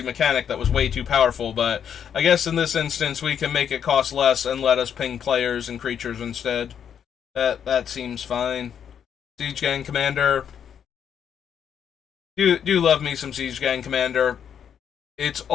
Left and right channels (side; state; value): right; quieter; 8.3 dB